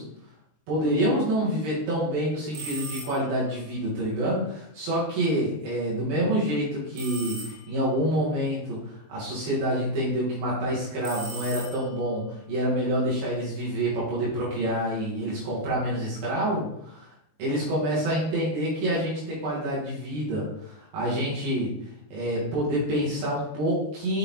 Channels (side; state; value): left; late; 20 ms